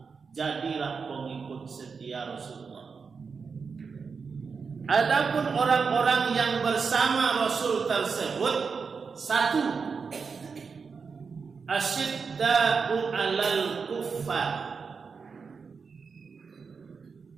Jadilah pengikut setia Rasulullah. Adapun orang-orang yang bersama Rasul tersebut, satu, asyidda'u 'alal kuffar,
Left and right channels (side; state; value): left; quieter; 5.3 dB